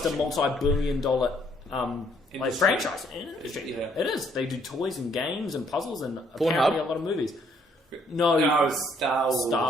multi-billion-dollar franchise. Yeah. It is. They do toys and games and puzzles and apparently a lot of movies. No, Star Wars.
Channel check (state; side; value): normal; both; correlation 0.67